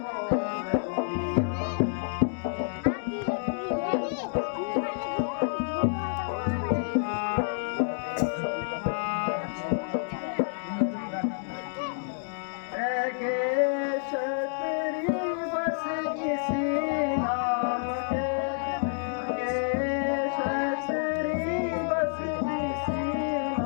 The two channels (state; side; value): silent; right; digital silence